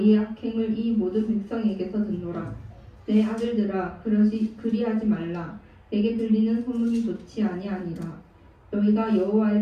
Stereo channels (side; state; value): both; identical; correlation 1.00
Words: 악행을 이 모든 백성에게서 듣노라. 내 아들들아 그리하지 말라. 내게 들리는 소문이 좋지 아니하니라. 너희가